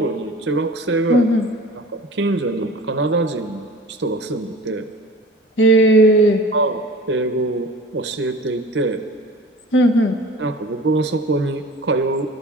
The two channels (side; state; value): both; normal; correlation 0.41